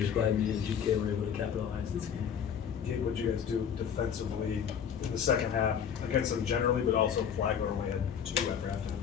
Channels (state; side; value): quieter; right; 8.0 dB